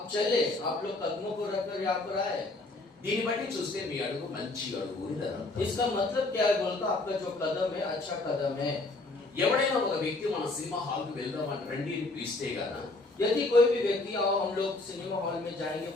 चले, आप लोग कदमों को रखकर यहाँ पर आए। దీన్ని బట్టి చూస్తే మీ అడుగు మంచి అడుగు అని అర్థం. इसका मतलब क्या है बोलता? आपका जो कदम है अच्छा कदम है। ఎవడైనా ఒక వ్యక్తి మన సినిమా హాల్ కు వెళ్దామని రండి అని పిలిస్తే గాన यदि कोई भी व्यक्ति आओ हम लोग सिनेमा हॉल में जाएंगे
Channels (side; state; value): right; quieter; 3.0 dB